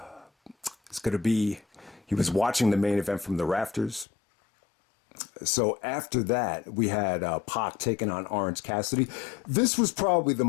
is going to be. He was watching the main event from the rafters. So after that, we had Pock taking on Orange Cassidy. This was probably the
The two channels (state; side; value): drops out; right; at 4.0 s